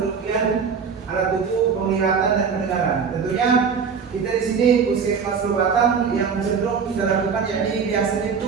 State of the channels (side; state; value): left; quieter; 6.0 dB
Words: alat tubuh, penglihatan dan pendengaran. Tentunya kita di sini Puskesmas Batang yang cenderung kita lakukan, yakni biasanya